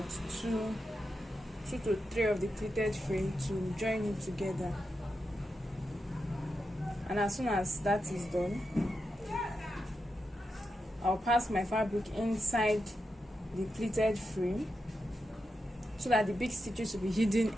two to three of the pleated frame to join it together. And as soon as that is done, I'll pass my fabric inside the pleated frame so that the big stitches will be hidden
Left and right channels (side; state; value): both; normal; correlation 0.87